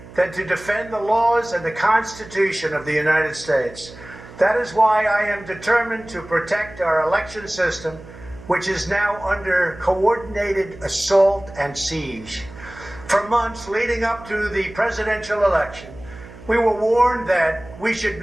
than to defend the laws and the Constitution of the United States. That is why I am determined to protect our election system, which is now under coordinated assault and siege. For months leading up to the presidential election, we were warned that we should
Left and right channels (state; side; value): noise; right; hum, 18 dB below the sound